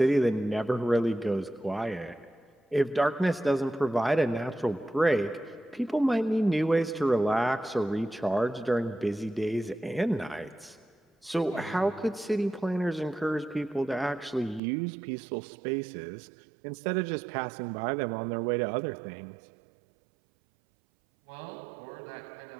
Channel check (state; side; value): drops out; left; at 14.6 s